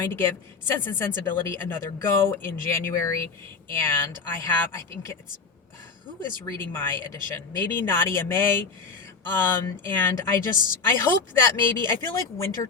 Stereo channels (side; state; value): right; quieter; 4.7 dB